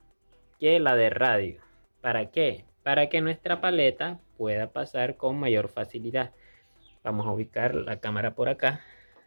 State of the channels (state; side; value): inverted; both; correlation -1.00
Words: que la de radio. ¿Para qué? Para que nuestra paleta pueda pasar con mayor facilidad. Vamos a ubicar la cámara por acá.